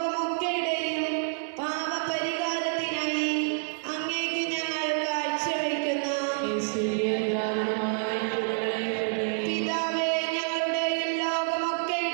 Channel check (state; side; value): silent; left; 59 dB below the other